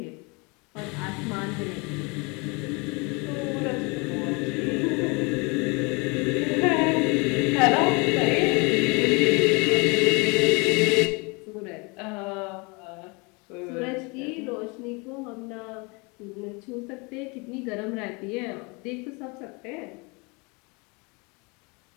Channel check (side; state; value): right; quieter; 29.4 dB